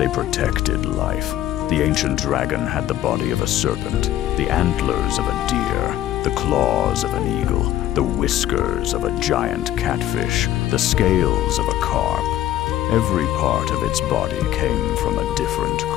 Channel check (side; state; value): right; quieter; 13.1 dB